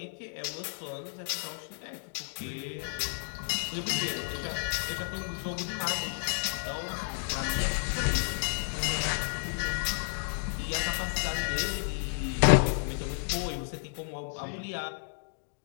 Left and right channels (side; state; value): right; silent; digital silence